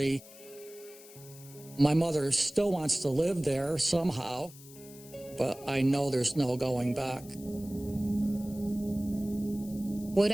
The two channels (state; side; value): noise; left; hiss, 19 dB below the sound